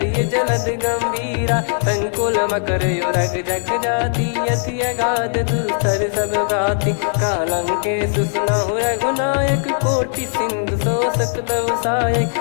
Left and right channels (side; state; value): right; silent; digital silence